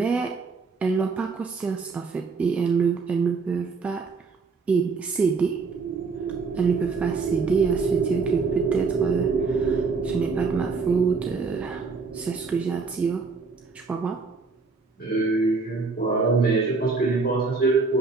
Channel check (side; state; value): left; quieter; 4.6 dB